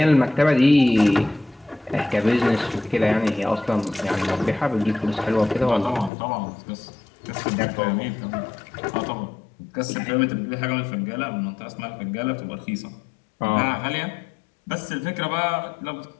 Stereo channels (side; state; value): right; drops out; at 6.1 s